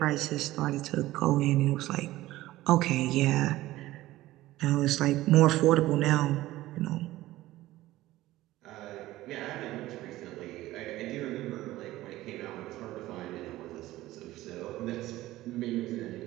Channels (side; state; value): left; quieter; 16.5 dB